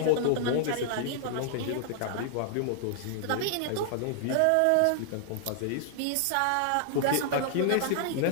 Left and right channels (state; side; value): different; both; correlation -0.01